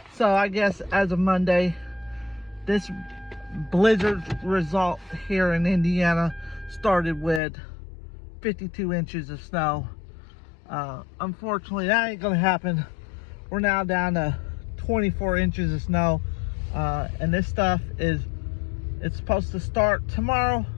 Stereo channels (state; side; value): drops out; right; at 7.4 s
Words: I guess as of Monday, this blizzard result here in Indiana started with 52 inches of snow. Unfortunately, that ain't gonna happen. We're now down to 24 inches of snow, and this stuff it's supposed to start tomorrow.